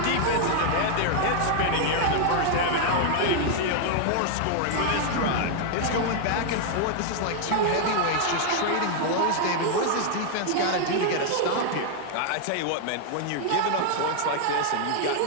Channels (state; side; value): different; both; correlation 0.00